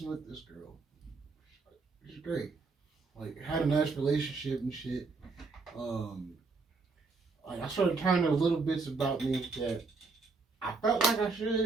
with this girl. She's great. Like, had a nice relationship and shit. Like, I started telling her little bits about me that I felt like I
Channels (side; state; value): left; quieter; 4.2 dB